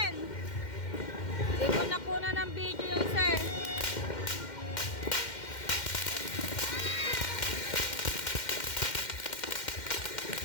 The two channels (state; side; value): late; right; 2.1 ms